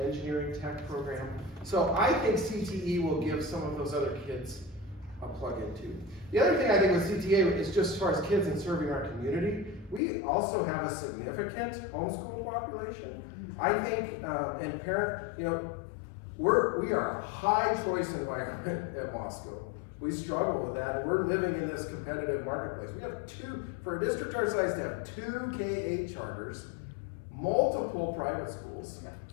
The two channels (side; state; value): right; drops out; at 10.0 s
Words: tech program. So I think CTE will give some of those other kids a plug-in too. The other thing I think with CTA is just as far as kids and serving our community, we also have a significant homeschool population. I think, and parent, we are a high choice environment at Moscow. We struggle with that, and we're living in this competitive marketplace. We have for a district our size to have 2 K-8 charters, multiple private schools,